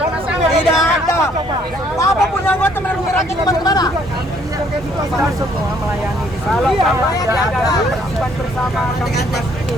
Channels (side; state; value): both; normal; correlation 0.64